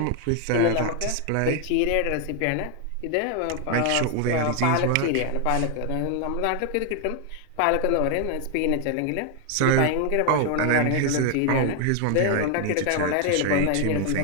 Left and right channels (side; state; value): both; different; correlation 0.00